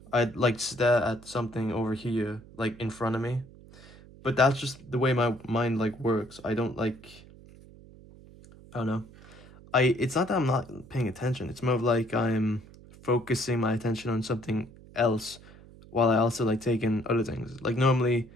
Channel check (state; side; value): noise; right; hum, 21 dB below the sound